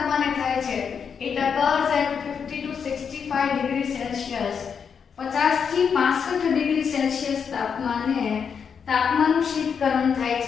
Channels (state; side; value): quieter; right; 6.7 dB